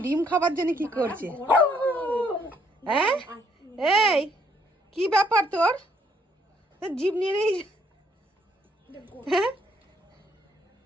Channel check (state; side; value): normal; both; correlation 0.68